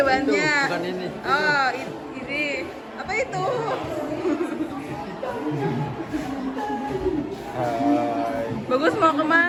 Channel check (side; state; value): both; identical; correlation 1.00